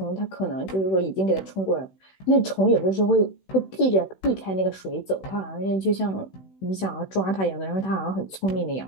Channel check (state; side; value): late; right; 16 ms